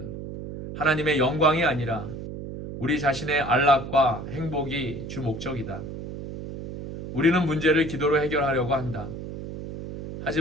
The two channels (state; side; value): noise; right; hum, 9 dB below the sound